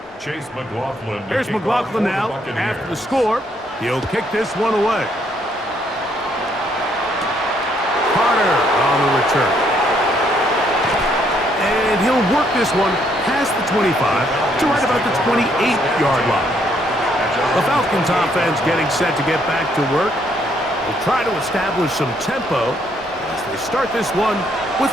Chase McLaughlin. Here's McLaughlin now after the score. He'll kick this one away. Carter on the return. And he'll work this one past the 25 to right about the 28-yard line. The Falcons offense getting set to get back to work. They'll try to establish some tempo as they start this one with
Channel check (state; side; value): normal; both; correlation 0.70